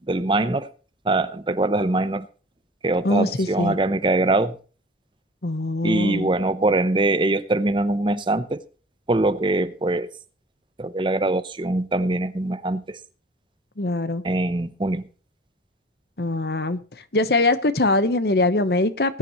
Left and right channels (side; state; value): both; normal; correlation 0.40